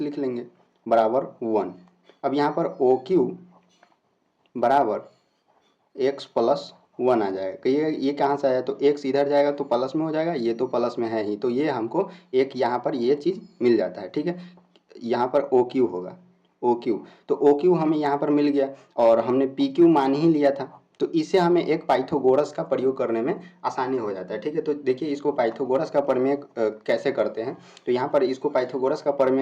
लिख लेंगे बराबर 1। अब यहाँ पर ओ क्यू बराबर एक्स प्लस 1 आ जाएगा। कहिए ये कहाँ से आया, तो एक्स इधर जाएगा तो प्लस में हो जाएगा, ये तो प्लस में है ही, तो ये हमको एक यहाँ पर ये चीज़ मिल जाता है। ठीक है, यहाँ पर ओ क्यू होगा, ओ क्यू, तो ओ क्यू हमें यहाँ पर मिल गया और हमने पी क्यू मान ही लिया था, तो इसे हमें एक पाइथागोरस का प्रयोग करने में आसानी हो जाता है। ठीक है, तो देखिए इसको पाइथागोरस का प्रमेय कैसे करते हैं। तो यहाँ पर इसको पाइथागोरस का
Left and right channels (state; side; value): identical; both; correlation 1.00